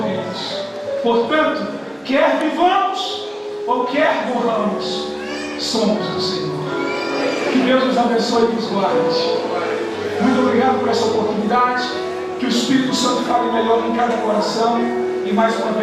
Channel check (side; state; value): both; identical; correlation 1.00